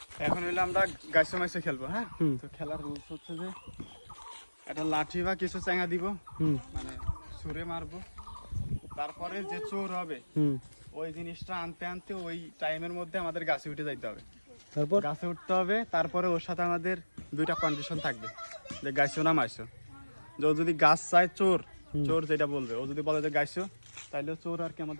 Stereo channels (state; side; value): inverted; both; correlation -1.00